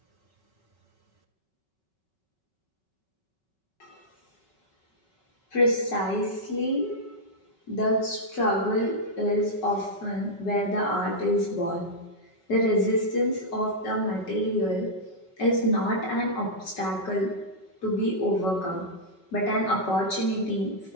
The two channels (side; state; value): right; late; 5.3 ms